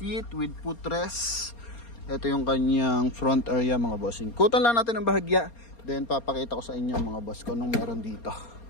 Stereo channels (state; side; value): late; right; 4.3 ms